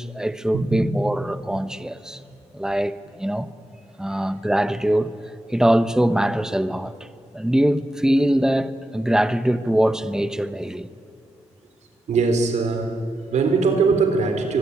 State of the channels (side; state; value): both; normal; correlation 0.88